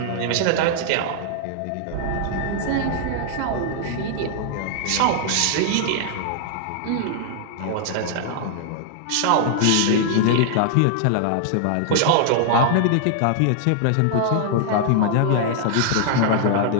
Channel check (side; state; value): both; different; correlation 0.00